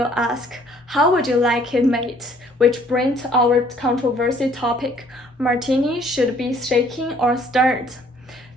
ask, how would you like it made? Which brings our controversy topic, martini should be shaken or stirred.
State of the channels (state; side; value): normal; both; correlation 0.60